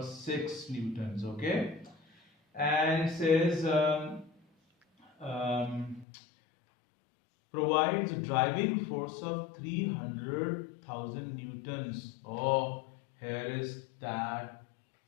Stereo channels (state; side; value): drops out; right; at 6.1 s